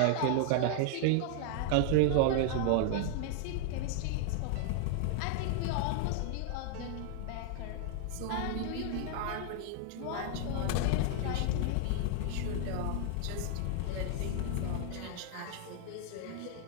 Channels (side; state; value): both; different; correlation 0.00